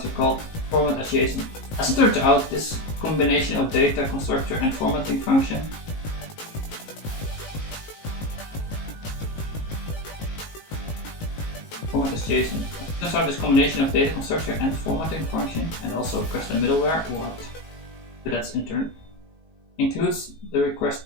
called format as JSON. As it turns out, this combination of data constructor and formatting function format as JSON. Turns out this combination of data constructor and formatting function, and also custom middleware, what? But that's intern, includes the request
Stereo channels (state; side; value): late; right; 19 ms